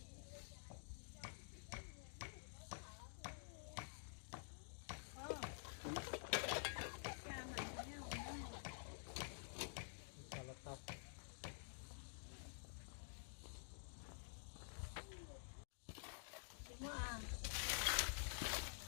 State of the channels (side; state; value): right; silent; digital silence